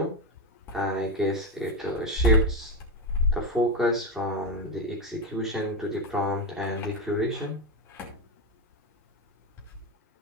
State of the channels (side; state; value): both; normal; correlation 0.13